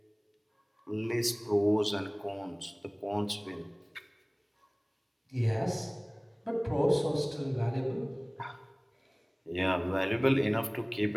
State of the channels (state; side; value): identical; both; correlation 1.00